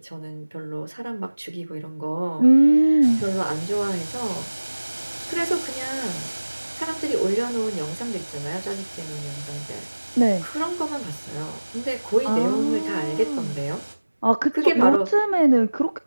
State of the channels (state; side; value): inverted; both; correlation -1.00